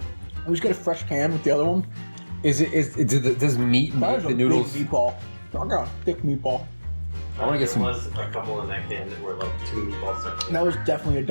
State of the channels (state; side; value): inverted; both; correlation -1.00